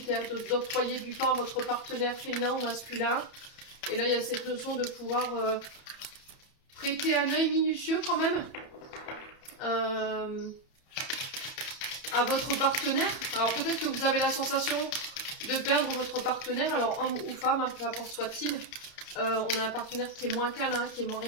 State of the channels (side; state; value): right; late; 30 ms